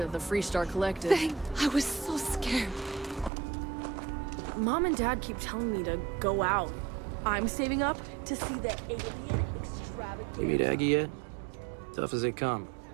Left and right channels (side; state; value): left; drops out; at 3.3 s